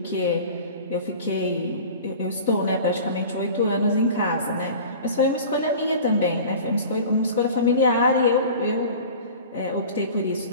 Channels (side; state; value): both; inverted; correlation -0.39